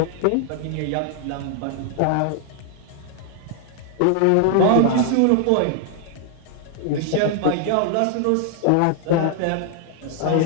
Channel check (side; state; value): both; different; correlation 0.00